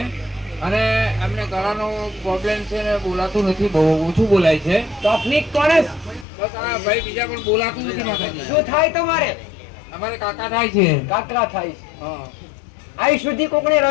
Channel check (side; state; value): right; drops out; at 6.2 s